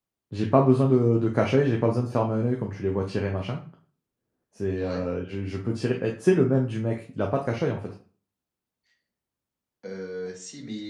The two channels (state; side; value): identical; both; correlation 1.00